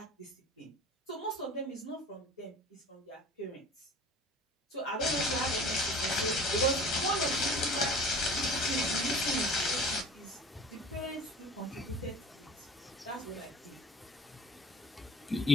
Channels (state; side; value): normal; both; correlation 0.42